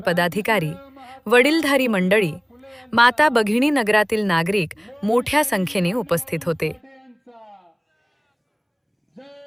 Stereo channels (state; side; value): identical; both; correlation 1.00